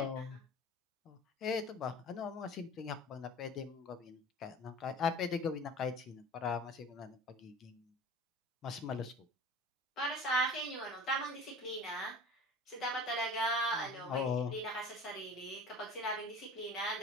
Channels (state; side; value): normal; both; correlation 0.41